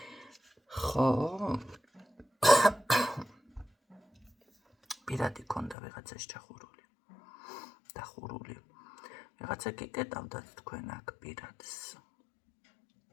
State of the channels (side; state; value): right; drops out; at 5.8 s